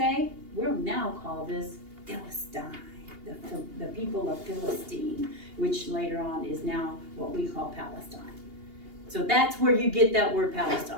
We'll now call this Philistine, the people of Philistine, which later on is now what we call Palestine. So that's where you get that word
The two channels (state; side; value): late; left; 2.8 ms